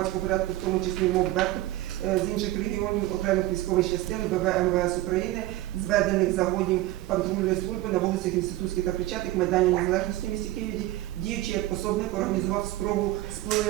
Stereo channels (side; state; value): left; quieter; 16.6 dB